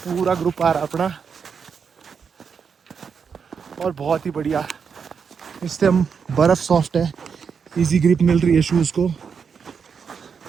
ग्रुप आ रहा अपना। और बहुत ही बढ़िया। इस टाइम बर्फ़ सॉफ्ट है, इजी ग्रिप मिल रही है शूज़ को।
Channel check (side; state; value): left; quieter; 6.3 dB